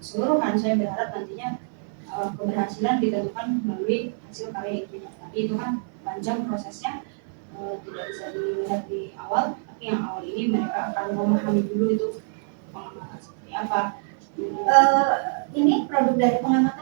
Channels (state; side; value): silent; left; 61 dB below the other